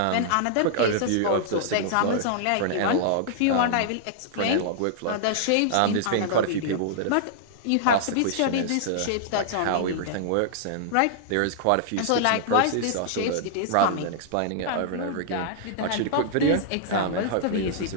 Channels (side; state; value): both; different; correlation -0.01